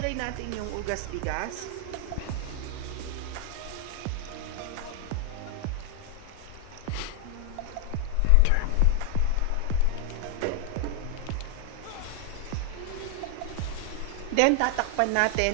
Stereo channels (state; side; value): different; both; correlation 0.00